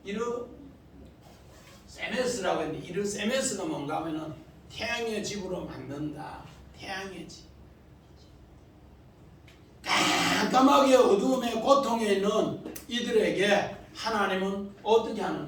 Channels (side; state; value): both; identical; correlation 1.00